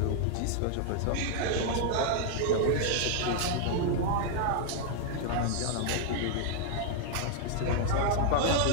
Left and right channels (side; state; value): both; different; correlation 0.00